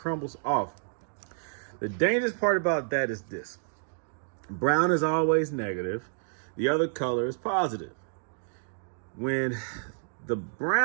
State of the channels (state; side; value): silent; left; digital silence